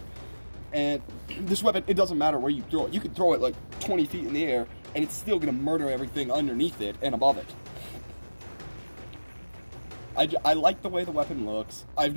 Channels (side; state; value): both; inverted; correlation -1.00